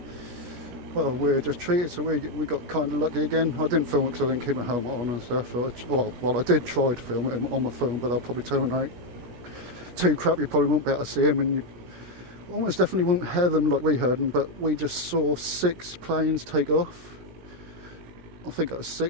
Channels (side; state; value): left; late; 17 ms